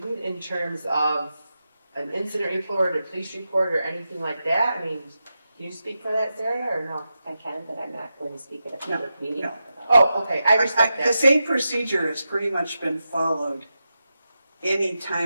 in terms of an incident report, a police report, or anything like that? I mean, can you speak for that, Sarah, or no? I can, but I'm not going to speak at a public meeting. No. Oh, okay, I respect The that. same procedure has pretty much been followed any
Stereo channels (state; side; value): inverted; both; correlation -0.90